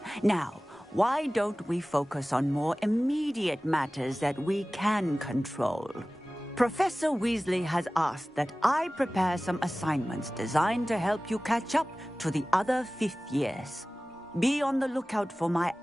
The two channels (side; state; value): both; normal; correlation 0.97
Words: Now, why don't we focus on more immediate matters that we can control? Professor Weasley has asked that I prepare some assignments designed to help you catch up to the other fifth years. Be on the lookout for my